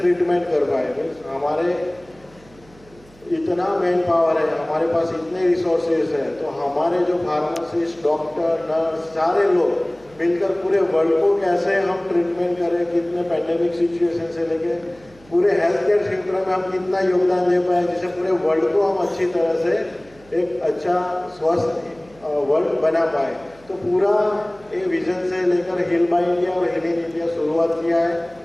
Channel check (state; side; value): noise; right; hum, 26 dB below the sound